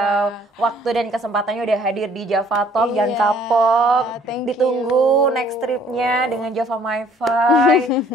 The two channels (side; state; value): both; normal; correlation 0.58